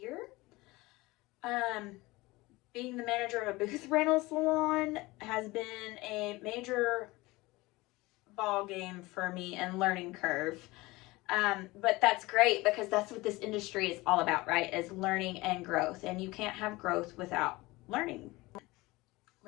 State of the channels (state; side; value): quieter; right; 21.2 dB